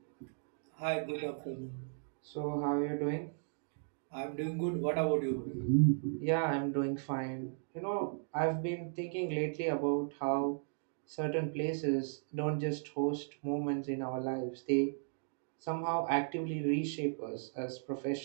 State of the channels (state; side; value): silent; left; digital silence